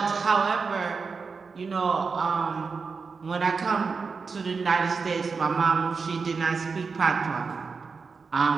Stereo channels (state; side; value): quieter; left; 5.0 dB